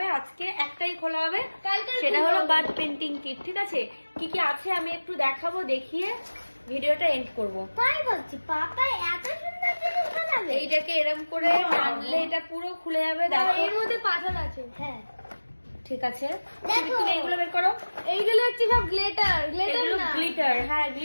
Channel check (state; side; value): inverted; both; correlation -1.00